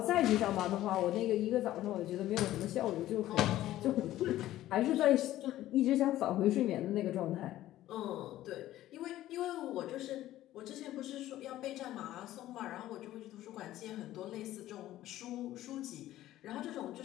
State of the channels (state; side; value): quieter; right; 14.3 dB